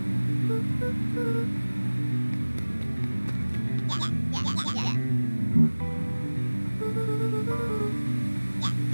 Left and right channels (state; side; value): inverted; both; correlation -1.00